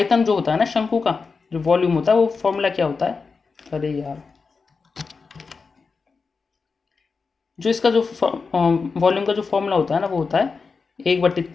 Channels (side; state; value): right; quieter; 4.8 dB